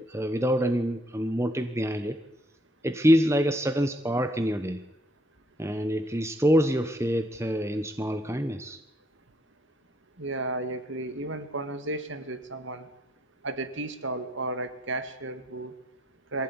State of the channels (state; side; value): normal; both; correlation 0.70